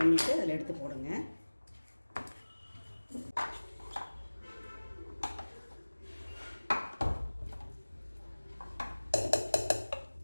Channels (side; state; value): both; inverted; correlation -1.00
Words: அதில் எடுத்து போடுங்க.